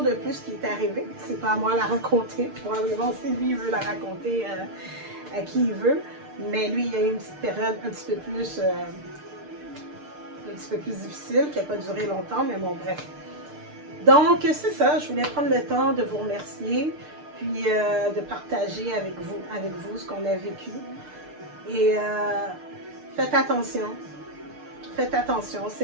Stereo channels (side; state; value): left; late; 6.6 ms